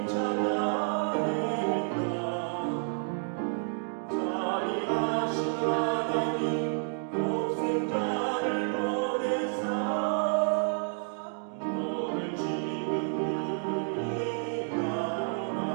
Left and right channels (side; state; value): left; silent; 58 dB below the other